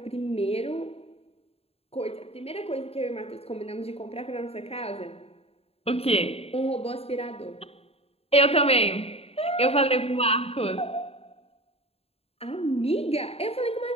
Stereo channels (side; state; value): right; late; 0.29 ms